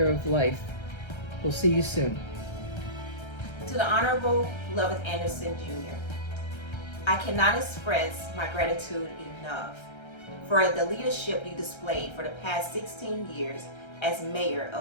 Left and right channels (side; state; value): right; late; 1.3 ms